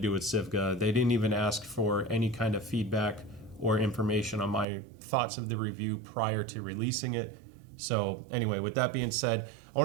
with Sivga. They didn't even ask for any kind of feedback or information on my thoughts of the review prior to releasing it. So anyway, with that being said, I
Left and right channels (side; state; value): left; drops out; at 4.7 s